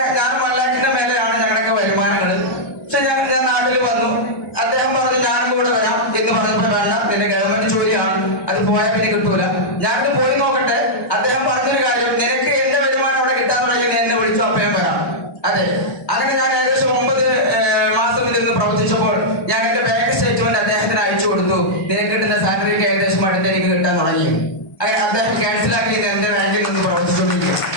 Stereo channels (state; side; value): late; right; 1.2 ms